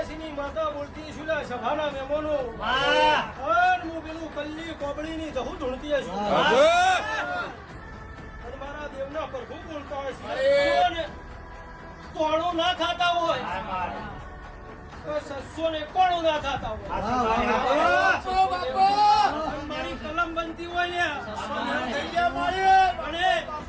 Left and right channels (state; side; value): identical; both; correlation 1.00